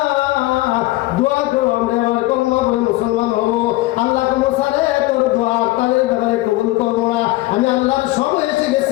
দোয়া করো, আমরা আমার কলমা পড়ে মুসলমান হবো। আল্লাহ মুসা রে তোর দোয়া তাদের ব্যাপারে কবুল করবো না, আমি আল্লাহর সময় এসে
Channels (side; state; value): right; quieter; 18.6 dB